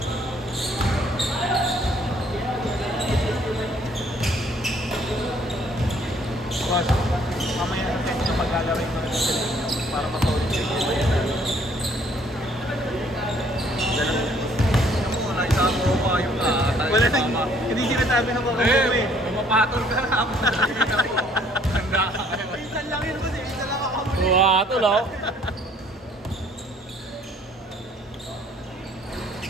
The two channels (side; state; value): both; normal; correlation 0.61